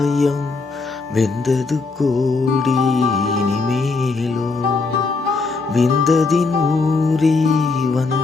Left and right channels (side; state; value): right; quieter; 4.0 dB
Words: வெந்தது கோடி இனிமேலோ. விந்ததினூரே